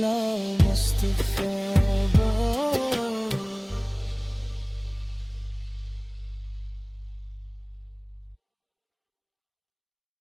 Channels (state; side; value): identical; both; correlation 1.00